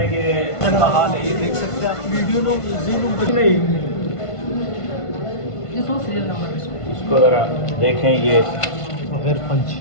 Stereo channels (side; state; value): right; late; 1.5 ms